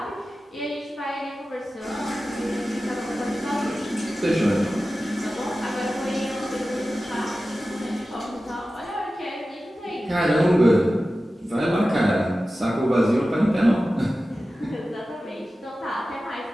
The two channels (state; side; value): normal; both; correlation 0.95